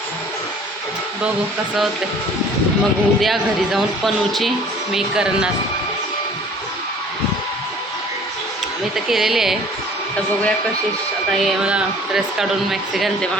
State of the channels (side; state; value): both; normal; correlation 0.51